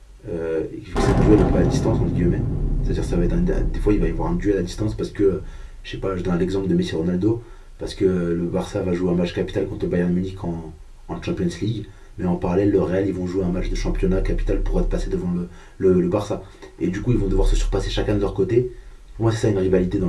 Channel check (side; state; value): both; identical; correlation 1.00